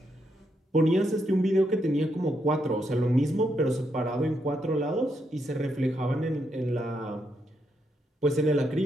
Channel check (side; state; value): both; normal; correlation 0.79